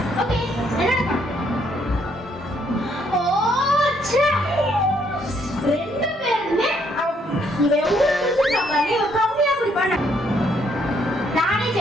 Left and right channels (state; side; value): normal; both; correlation 0.70